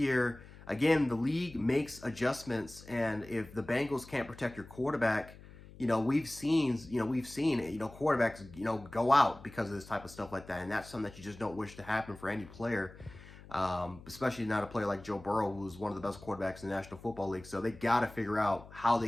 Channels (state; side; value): noise; left; hum, 19 dB below the sound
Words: again, the league makes adjustments. And if the Bengals can't protect your quarterback, we've seen quarterbacks, go out because of this type of stuff like that. And that's something that you just don't wish to happen for any player. Especially not a player like Joe Burrow, who's one of the best quarterbacks in the National Football League. So they got to figure out how they